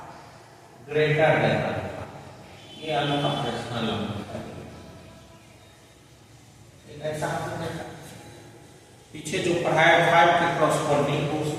ग्रेटर देन अल्फा। ये अल्फा रेशनल नंबर है। ऐसा आपने देखा पीछे जो पढ़ाया 5 के कॉरस्पॉन्डिंग, तो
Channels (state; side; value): identical; both; correlation 1.00